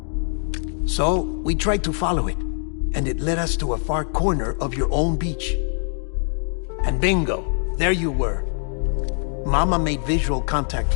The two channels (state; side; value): silent; right; 59 dB below the other